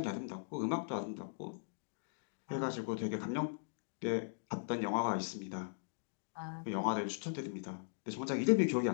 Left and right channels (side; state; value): right; silent; digital silence